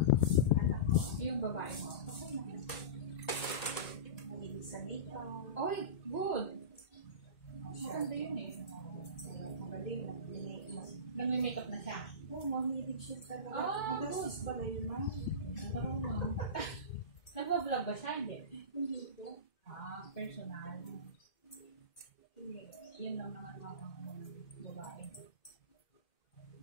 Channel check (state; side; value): late; right; 2.1 ms